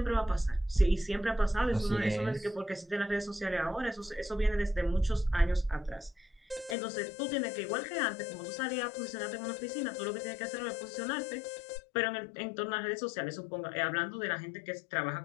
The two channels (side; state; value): right; drops out; at 6.8 s